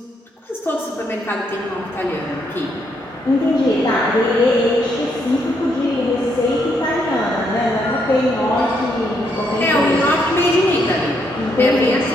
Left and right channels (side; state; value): both; normal; correlation 0.75